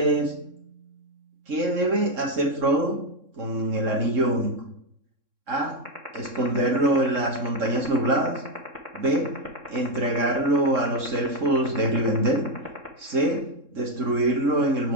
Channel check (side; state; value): left; late; 3.7 ms